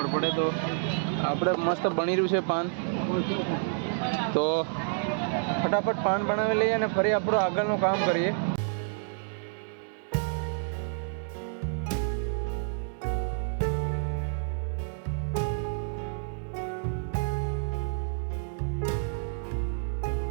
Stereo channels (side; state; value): left; silent; digital silence